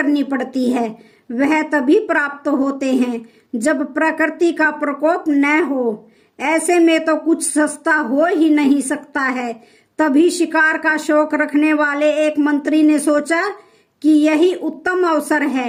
पड़ती है। वह तभी प्राप्त होते हैं जब प्रकृति का प्रकोप न हो। ऐसे में तो कुछ सस्ता हो ही नहीं सकता है। तभी शिकार का शौक रखने वाले एक मंत्री ने सोचा कि यही उत्तम अवसर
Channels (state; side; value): identical; both; correlation 1.00